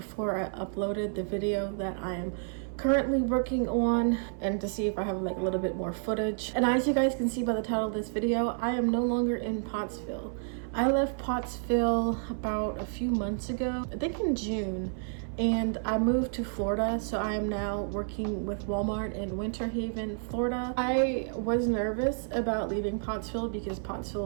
I uploaded the video that I am currently working on and to see if I have like a little bit more footage. And as you guys can see by the title of this video, I am no longer in Pottsville. I left Pottsville about a few months ago, I think in June, and I moved to Florida, so I am now working with Walmart in Winter Haven, Florida. I was nervous about leaving Pottsville because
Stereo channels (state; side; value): silent; left; 57 dB below the other